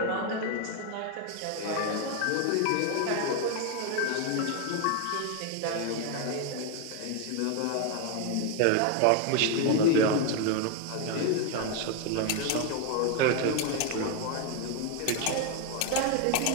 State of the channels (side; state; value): both; different; correlation 0.01